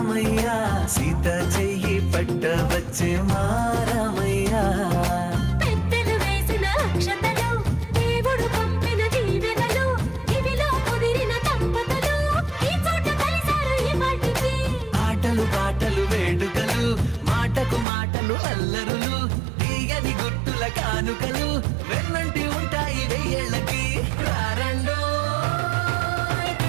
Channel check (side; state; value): left; drops out; at 17.9 s